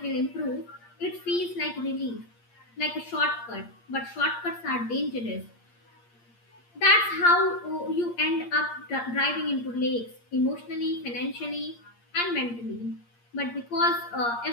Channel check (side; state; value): right; late; 8.6 ms